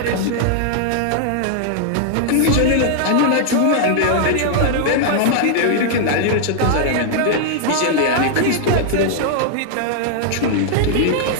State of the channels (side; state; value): both; different; correlation -0.01